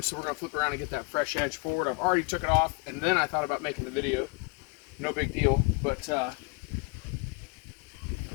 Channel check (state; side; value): quieter; right; 31.0 dB